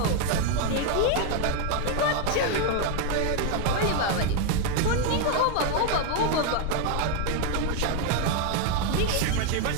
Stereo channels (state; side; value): different; both; correlation 0.01